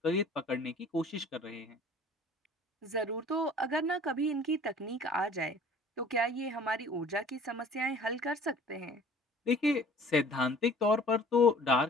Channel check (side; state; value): both; normal; correlation 0.49